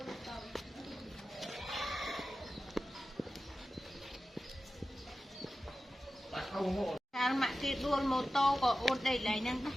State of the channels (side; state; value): both; normal; correlation 0.94